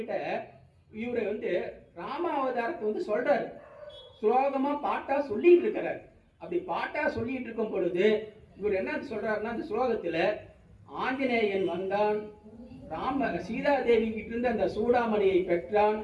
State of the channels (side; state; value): both; identical; correlation 1.00